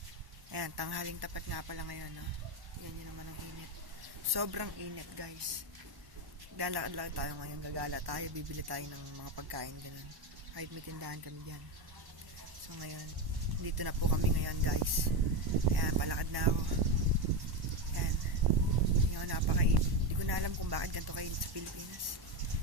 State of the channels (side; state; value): left; late; 1.1 ms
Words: ayan, tanghaling tapat nga pala ngayon, no? Yan yun naman ang init. Sobrang init guys. Lalakad-lakad tayo ngayon, gagala tayo, bibili tayo ng mga pagkain, ganun. Kahit may tindahan kami dyan. So ngayon, dito na po kami ngayon guys. Ayan, palakad na ako. Ayan. Ngayon, napakainit. Hindi ko na alam kung bakit ganito kainit sa Pilipinas.